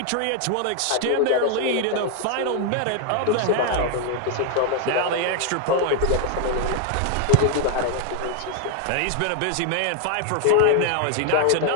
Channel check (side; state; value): both; different; correlation 0.00